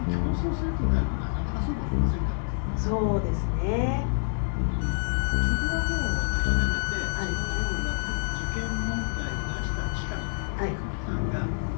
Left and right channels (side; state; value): right; silent; digital silence